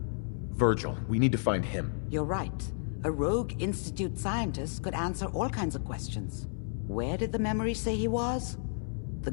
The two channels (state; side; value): silent; right; digital silence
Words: Virgil, we need to find him. You're right. A rogue Institute scientist could answer all kinds of questions. Where did the memory say he was? The